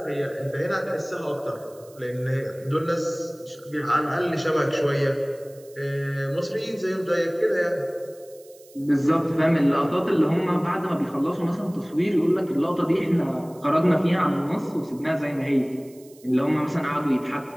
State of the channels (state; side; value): noise; right; hiss, 25 dB below the sound